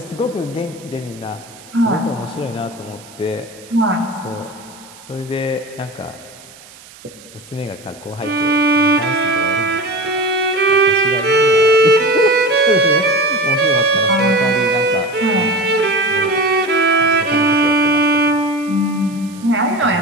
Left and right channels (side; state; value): right; noise; hiss, 22 dB below the sound